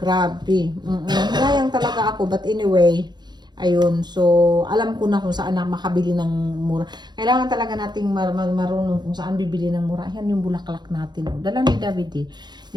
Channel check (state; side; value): late; left; 0.21 ms